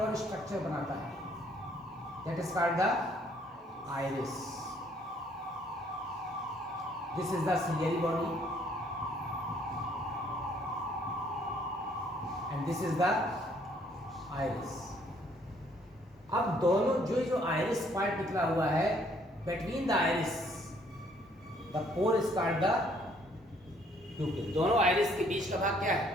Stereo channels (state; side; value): normal; both; correlation 0.64